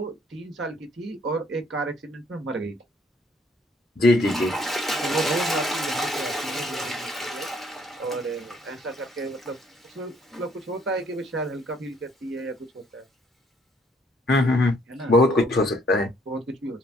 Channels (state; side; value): normal; both; correlation 0.66